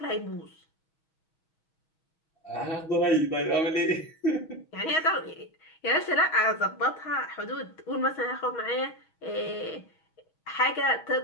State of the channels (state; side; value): late; right; 6.3 ms